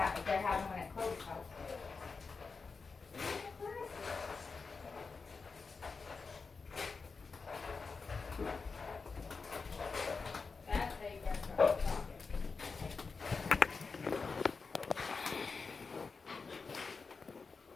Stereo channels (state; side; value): quieter; right; 4.7 dB